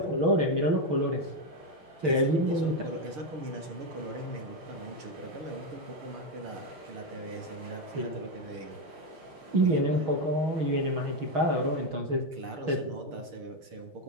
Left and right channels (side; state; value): left; late; 6.7 ms